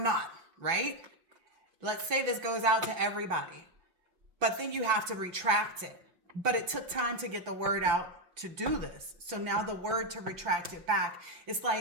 not, right? Let's say this goes out to everybody, but then you have to retract it. But it took time to get the word out to do this. So now the word to retract it back, it's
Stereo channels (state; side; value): late; left; 5.9 ms